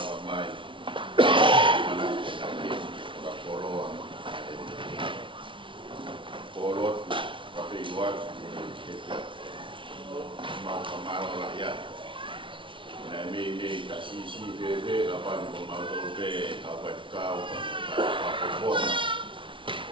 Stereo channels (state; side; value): late; left; 0.25 ms